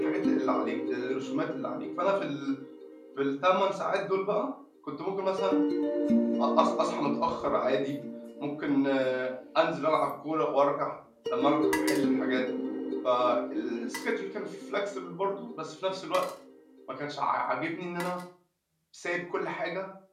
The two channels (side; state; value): both; identical; correlation 1.00